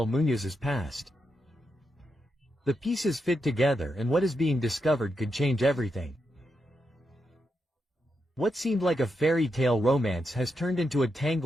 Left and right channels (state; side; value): normal; both; correlation 0.84